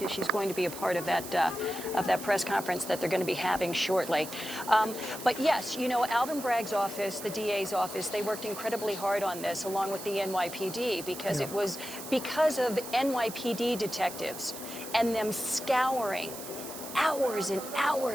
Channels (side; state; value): right; noise; hiss, 11 dB below the sound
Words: she's going to be a part of that press conference that they're going to be having shortly. But yes, you know, Alvin Bragg's office, the DA's office, they worked incredibly hard on this, along with the NYPD, because it was because of NYPD detectives and them scouring hours and